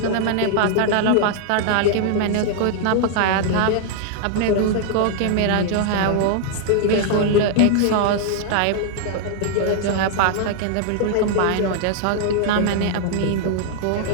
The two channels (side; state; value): both; different; correlation -0.01